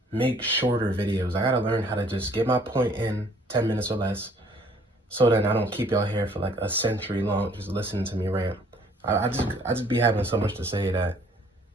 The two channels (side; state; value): both; normal; correlation 0.59